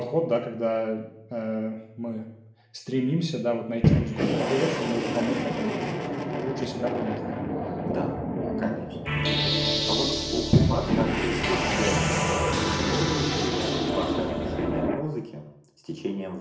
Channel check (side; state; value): both; identical; correlation 1.00